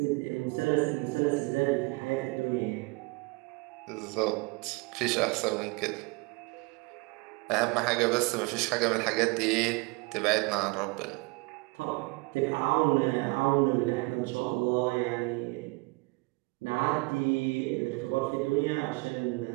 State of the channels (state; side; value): quieter; left; 27.1 dB